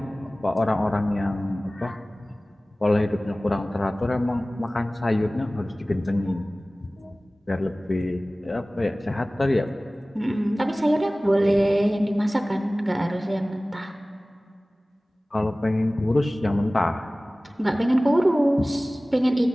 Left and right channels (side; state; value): both; normal; correlation 0.98